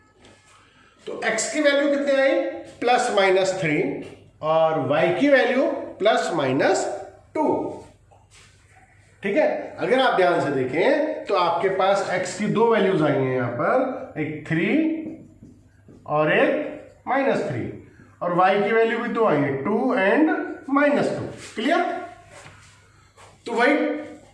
तो x की वैल्यू कितनी आई, प्लस माइनस 3 और y की वैल्यू प्लस माइनस 2। ठीक है, अगर आप ध्यान से देखें तो आपके पास x की दो वैल्यूज आई हैं यहां पर, एक 3 और एक -3, और y की वैल्यू भी दो आई है, 2 एंड -2। क्लियर? तो वही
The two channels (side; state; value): both; identical; correlation 1.00